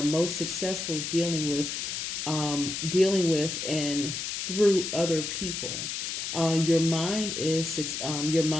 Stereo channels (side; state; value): left; noise; hiss, 4 dB below the sound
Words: most successful dealing with dealing with and through other people. Your mind is